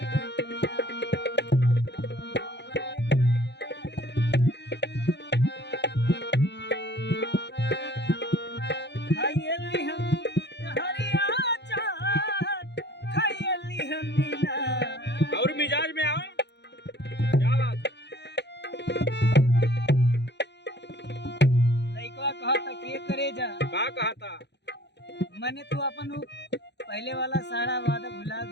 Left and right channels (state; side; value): late; right; 0.50 ms